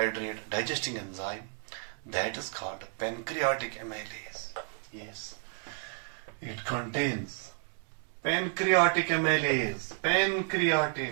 digesting enzyme that is called pancreatic amylase. Yes, it contains pancreatic amylase.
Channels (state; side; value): silent; left; 57 dB below the other